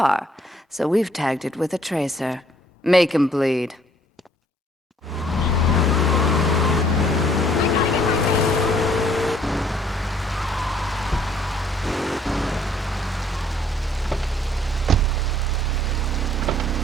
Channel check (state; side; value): normal; both; correlation 0.62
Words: so we've tagged it with a tracer. Make him bleed.